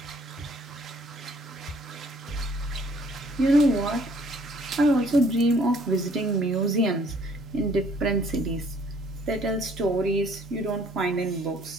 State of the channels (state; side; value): normal; both; correlation 0.60